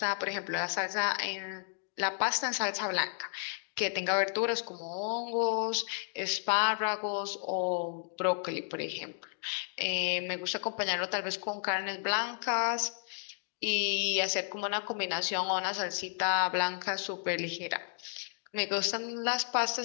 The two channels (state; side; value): silent; right; digital silence